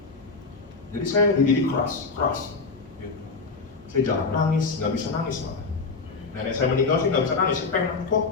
Jadi saya dididik keras. Gitu. Saya jarang nangis, nggak bisa nangis malah. Nenek saya meninggal sih nggak bisa nangis, saya pengen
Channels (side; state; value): right; quieter; 4.4 dB